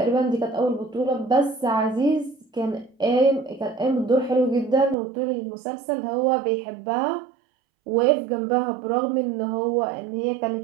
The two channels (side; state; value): left; drops out; at 5.0 s